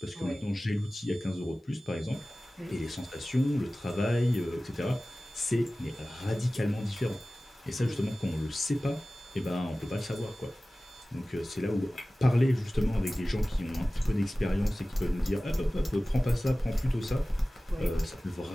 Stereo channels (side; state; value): both; normal; correlation 0.97